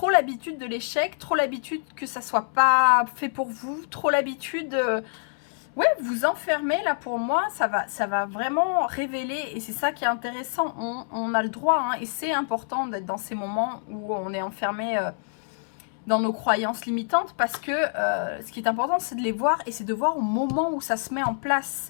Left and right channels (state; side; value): silent; right; 61 dB below the other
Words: l'habitude de l'échec, trop l'habitude que ça soit pas fait pour vous, trop l'habitude, ouais, vous enfermez, là, pour moi, ça va vraiment révéler, et c'est ça qui est intéressant, on a le droit, hein, et c'est important d'être dans ces moments où on est enfermé dans nos croyances limitantes, parce que ce qui est important, c'est de les voir, et c'est de voir au moment où ça se met en